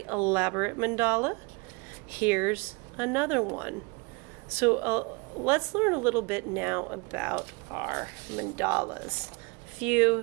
elaborate mandala. Here's another one. So let's learn a little bit now about our mandalas. A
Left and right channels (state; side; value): quieter; left; 29.1 dB